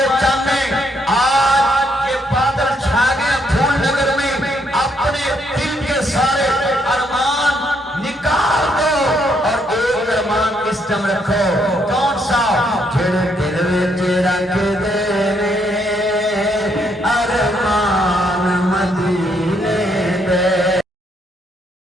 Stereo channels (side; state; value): both; normal; correlation 0.73